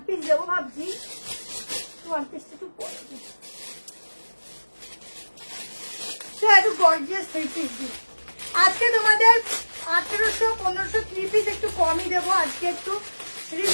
পিস দেবো ভাবছি, ওয়ান পিসটা একটু পরে দিই। একটু গর্জিয়াস থ্রি পিস দিই আজকে তোমাদের। 1800-1500 থ্রি পিস একটু কমই দেবো আজকে, একটু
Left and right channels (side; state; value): both; inverted; correlation -1.00